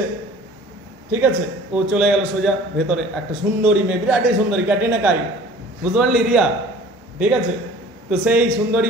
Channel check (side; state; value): both; normal; correlation 0.47